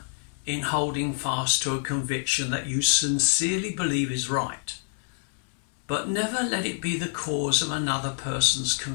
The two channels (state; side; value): silent; right; 60 dB below the other